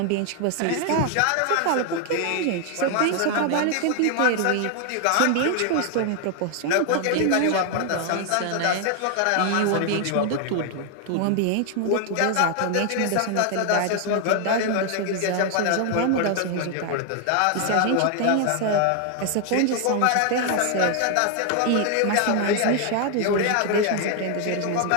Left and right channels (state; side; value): different; both; correlation 0.00